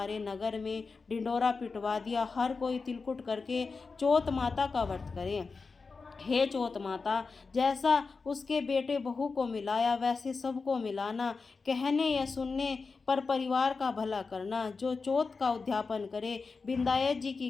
नगर में ढिंडोरा पिटवा दिया, हर कोई तिलकुट करके चौथ माता का व्रत करे। हे चौथ माता, जैसा उसके बेटे बहू को मिलाया वैसे सबको मिलाना। कहने या सुनने पर परिवार का भला करना। जो चौथ का उद्यापन करे, विंदायक जी की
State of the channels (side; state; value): right; quieter; 4.5 dB